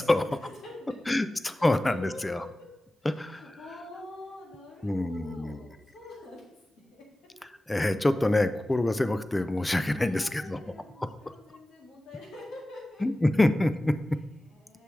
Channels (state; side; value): normal; both; correlation 0.96